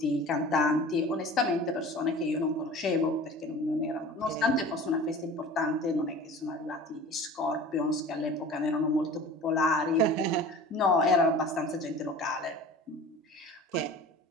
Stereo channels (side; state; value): both; normal; correlation 0.40